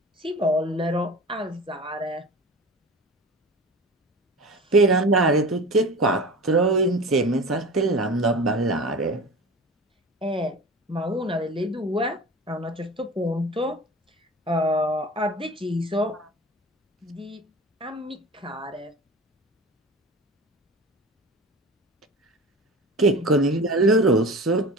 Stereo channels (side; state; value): both; normal; correlation 0.35